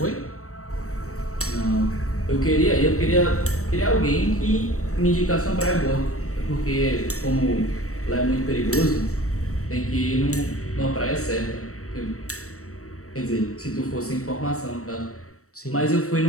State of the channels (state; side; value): late; right; 0.65 ms